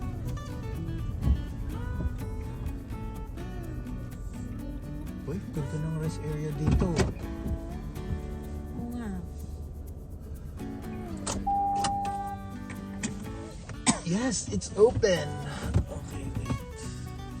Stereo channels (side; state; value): both; identical; correlation 1.00